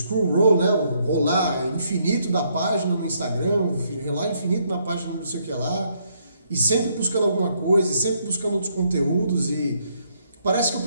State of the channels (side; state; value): both; inverted; correlation -0.72